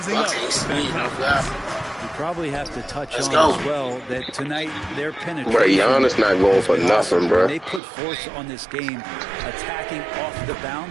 up. You probably have to touch Let's on go. as well that tonight their penetration. Bro, Giannis not going for nothing, bro. They put force on this game, attacking off the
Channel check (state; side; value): drops out; left; at 7.8 s